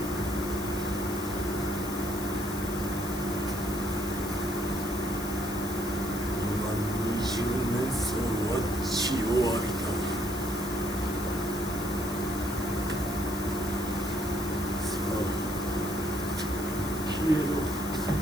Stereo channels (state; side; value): noise; left; hiss, 10 dB below the sound